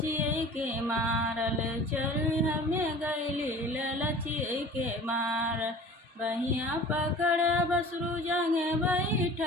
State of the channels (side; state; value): both; normal; correlation 0.43